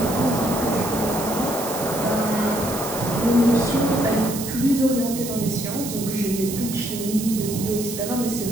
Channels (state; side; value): noise; right; hiss, 8 dB below the sound